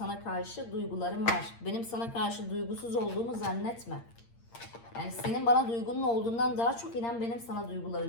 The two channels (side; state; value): right; late; 8.7 ms